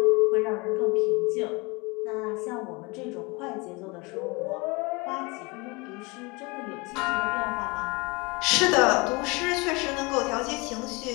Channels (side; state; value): right; quieter; 26.8 dB